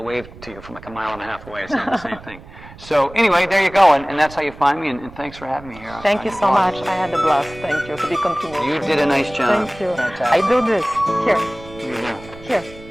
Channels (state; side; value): noise; right; rumble, 18 dB below the sound